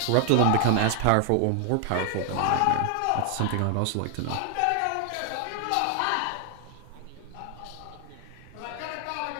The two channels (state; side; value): different; both; correlation 0.00